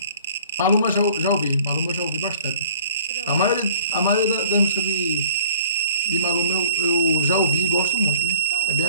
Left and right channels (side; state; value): both; inverted; correlation -0.55